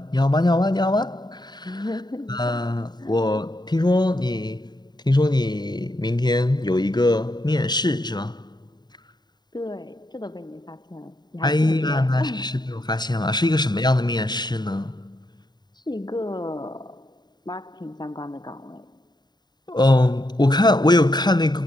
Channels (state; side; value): late; right; 0.20 ms